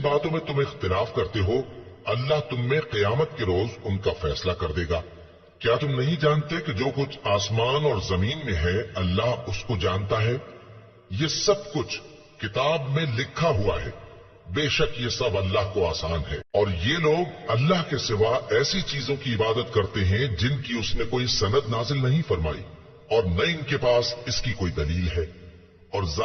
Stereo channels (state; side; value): identical; both; correlation 1.00